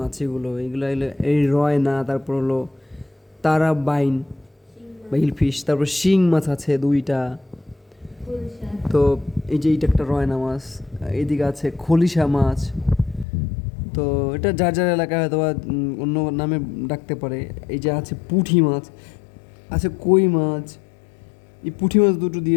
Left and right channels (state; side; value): drops out; right; at 13.2 s